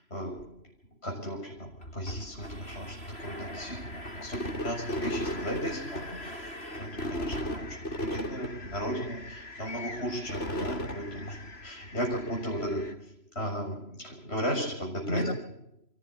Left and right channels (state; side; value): late; right; 3.0 ms